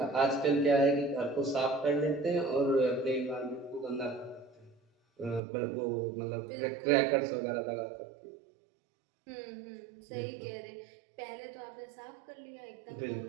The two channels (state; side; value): drops out; left; at 5.4 s